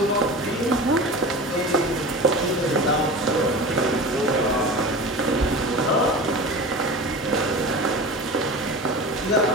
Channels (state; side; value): normal; both; correlation 0.32